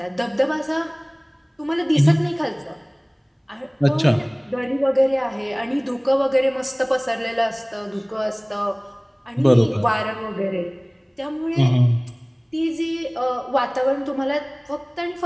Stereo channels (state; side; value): identical; both; correlation 1.00